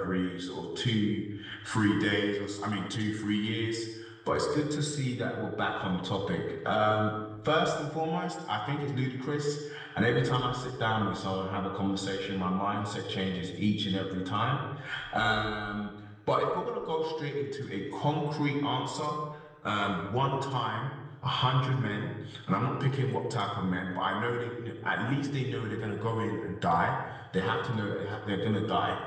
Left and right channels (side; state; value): both; identical; correlation 1.00